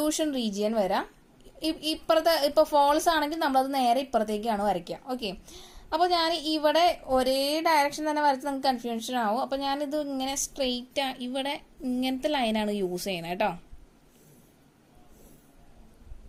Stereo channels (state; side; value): identical; both; correlation 1.00